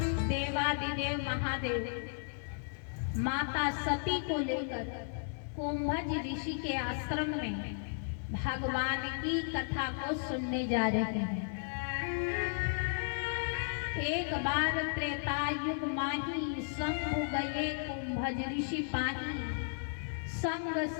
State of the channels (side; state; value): right; silent; digital silence